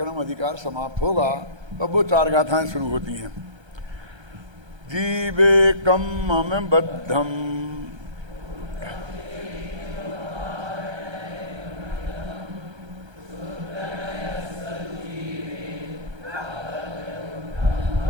अधिकार समाप्त होगा, तब वो 4 गाथाएं शुरू होती हैं। जीवे कम बद्धम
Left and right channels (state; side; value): late; left; 1.3 ms